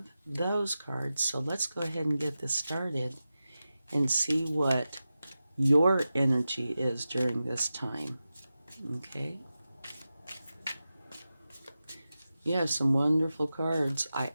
those cards. So let's go ahead and get this started and see what your energy is during this time. Okay? You have some wonderful cards. I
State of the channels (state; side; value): inverted; both; correlation -0.93